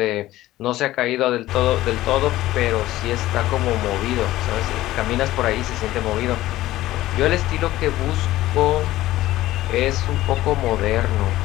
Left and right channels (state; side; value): quieter; right; 15.8 dB